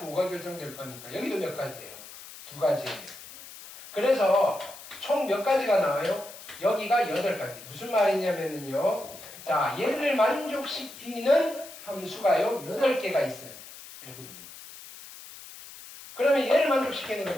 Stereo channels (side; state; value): left; noise; hiss, 16 dB below the sound